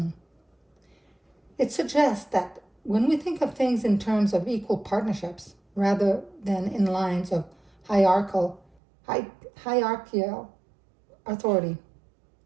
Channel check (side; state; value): left; drops out; at 8.8 s